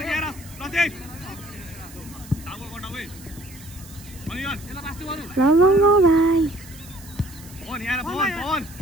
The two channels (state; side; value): noise; right; hiss, 19 dB below the sound